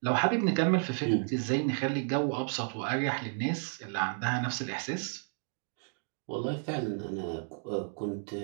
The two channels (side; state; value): left; silent; digital silence